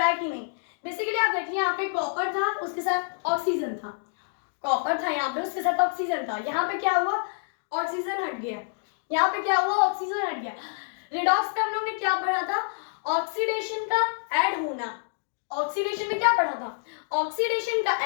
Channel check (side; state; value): right; silent; digital silence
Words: है कि नहीं। बेसिकली आप देखिए यहाँ पे कॉपर था उसके साथ ऑक्सीजन था, कॉपर था यहाँ पे उसके साथ ऑक्सीजन था, यहाँ पे क्या हुआ ऑक्सीजन हट गया, यहाँ पे क्या हुआ ऑक्सीजन हट गया। रिडॉक्स पे हम लोग ने क्या पढ़ा था, ऑक्सीडेशन का ऐड होना। ऑक्सीडेशन में क्या पढ़ा था, ऑक्सीडेशन का